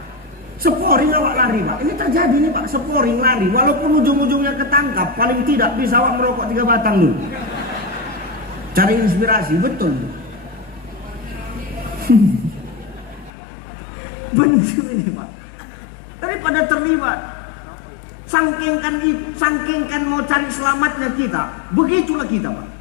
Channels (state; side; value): drops out; right; at 13.3 s